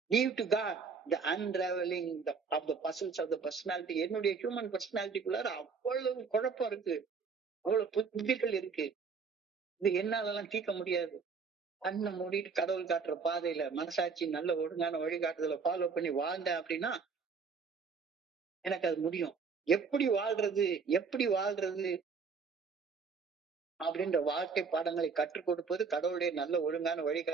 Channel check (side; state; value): left; quieter; 5.3 dB